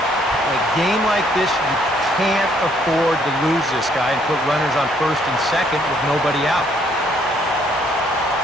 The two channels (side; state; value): both; normal; correlation 0.67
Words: In a game like this, you can't afford to lose this guy and put runners on first and second with nobody out.